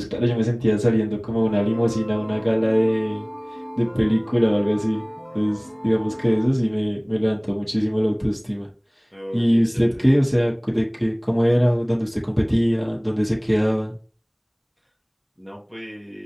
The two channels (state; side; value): identical; both; correlation 1.00